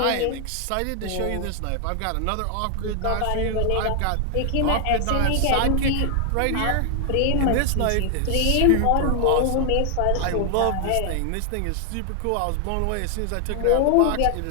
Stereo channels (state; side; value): different; both; correlation 0.00